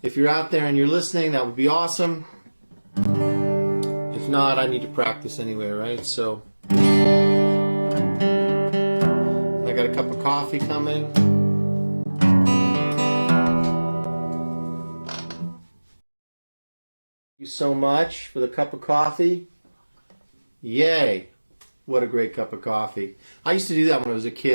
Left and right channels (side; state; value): both; inverted; correlation -1.00